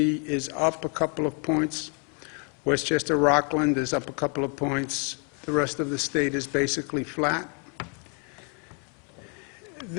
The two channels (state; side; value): quieter; right; 37.7 dB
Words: is up a couple of points. Westchester, Rockland is up a couple of points. The rest of the state is basically flat.